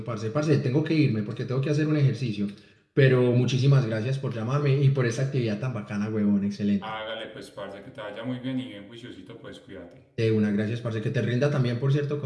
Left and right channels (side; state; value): both; identical; correlation 1.00